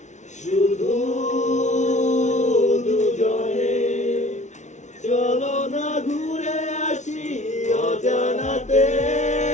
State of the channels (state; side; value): late; right; 0.34 ms